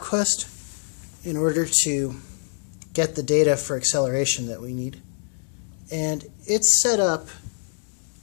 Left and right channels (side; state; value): right; silent; 57 dB below the other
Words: in order to get the data for acceleration that we need. And it's set up